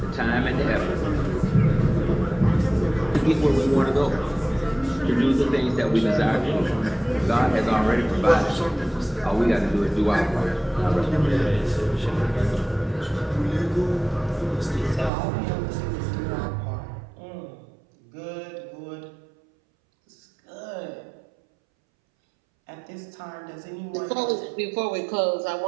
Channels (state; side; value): drops out; left; at 15.1 s